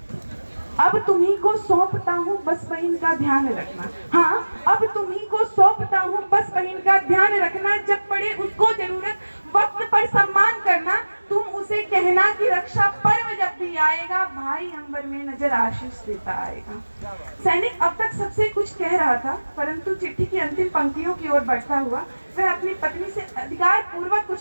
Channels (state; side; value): inverted; both; correlation -1.00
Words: अब तुम्ही को सौंपता हूँ बस बहन का ध्यान रखना, हाँ अब तुम्ही को सौंपता हूँ बस बहन का ध्यान रखना, जब पड़े उसको जरूरत वक्त पर सम्मान करना, तुम उसे कहना कि रक्षा पर्व जब भी आएगा भाई अंबर में नजर आशीष देता आएगा। सैनिक अब तक सबसे कुछ कह रहा था, परंतु चिट्ठी की अंतिम पंक्तियों की ओर बढ़ता हुआ वह अपनी पत्नी से अधिकार पूर्वक